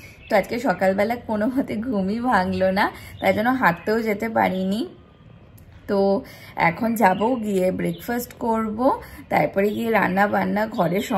তো আজকে সকালবেলা কোনো মতে ঘুমই ভাঙলো না, তাই জন্য হাঁটতেও যেতে পারিনি। তো এখন যাব, গিয়ে ব্রেকফাস্ট করব, তারপরে গিয়ে রান্না বান্না, ঘরের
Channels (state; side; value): identical; both; correlation 1.00